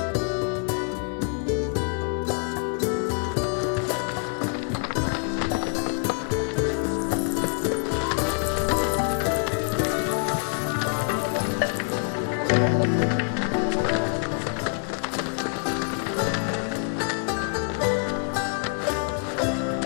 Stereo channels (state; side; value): quieter; right; 39.8 dB